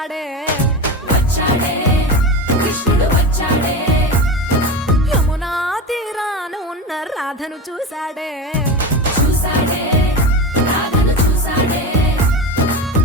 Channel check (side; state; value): both; normal; correlation 0.24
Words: కృష్ణుడు వచ్చాడే యమునా తీరాన ఉన్న రాధను చూశాడే రాధను చూసాడే